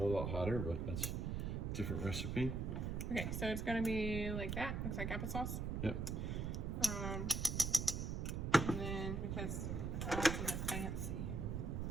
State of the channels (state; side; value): noise; right; rumble, 1 dB below the sound